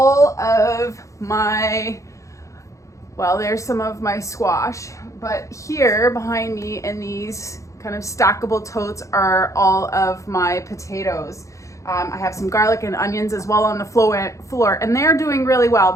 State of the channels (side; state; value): right; late; 0.15 ms